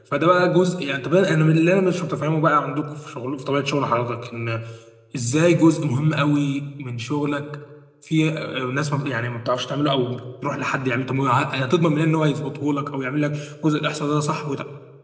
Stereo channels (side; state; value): both; identical; correlation 1.00